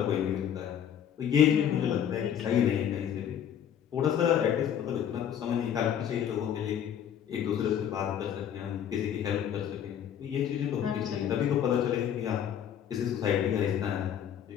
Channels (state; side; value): quieter; right; 9.3 dB